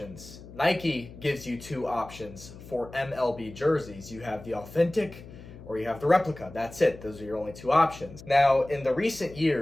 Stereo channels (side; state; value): left; noise; hum, 17 dB below the sound